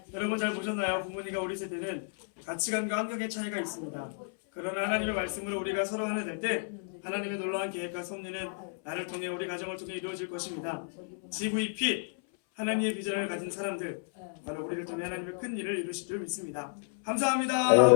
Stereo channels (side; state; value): right; silent; 56 dB below the other